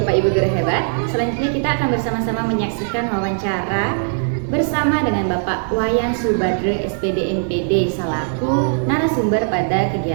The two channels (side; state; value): left; silent; 64 dB below the other